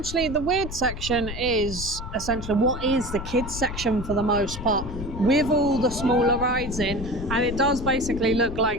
the weird section is essentially what is the kids section for the most part, with all the smaller rides in, and it does basically look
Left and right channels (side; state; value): left; noise; rumble, 8 dB below the sound